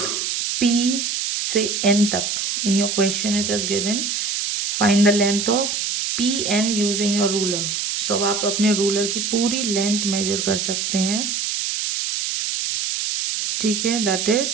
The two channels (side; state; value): right; noise; hiss, 1 dB below the sound